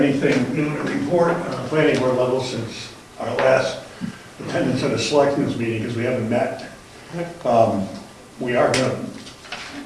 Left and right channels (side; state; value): both; identical; correlation 1.00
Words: new to report on the planning board level since our last attendance at a selectmen's meeting, because we haven't met. We are going